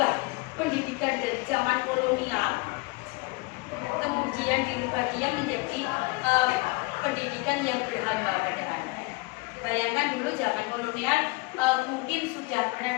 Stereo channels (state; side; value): quieter; right; 25.4 dB